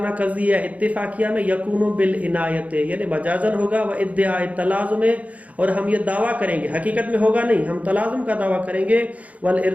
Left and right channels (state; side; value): late; left; 0.069 ms